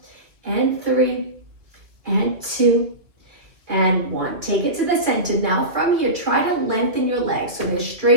and three, and two, and one. Take it to the center. Now from here, try to lengthen your legs so they're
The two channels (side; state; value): left; late; 2.4 ms